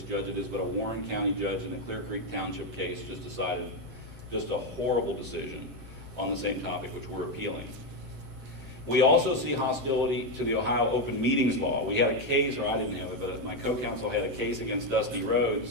judge it is, but a Warren County judge in the Clear Creek Township case just decided just a horrible decision on the same topic, which we're appealing. We also see hostility to the Ohio Open Meetings Law. We had a case, or I didn't have it, but my co-counsel had a case against Dusty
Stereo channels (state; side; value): late; left; 7.7 ms